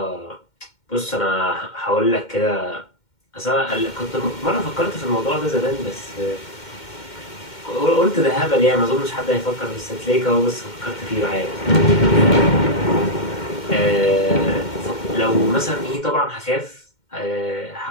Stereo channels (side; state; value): right; late; 2.1 ms